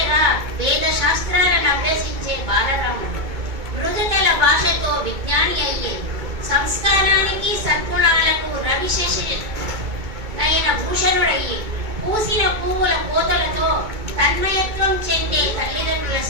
వేద శాస్త్రాలను అభ్యసించే బాలరాముడు, మృదుతల భాషతో విజ్ఞాని అయ్యే, సంస్కారానికి సద్గుణాలకు రవిశేషైన భూషణుడయ్యే, పూసిన పువ్వుల కోతలతో తన్మయత్వం చెందే తల్లిదండ్రుల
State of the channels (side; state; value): left; late; 2.2 ms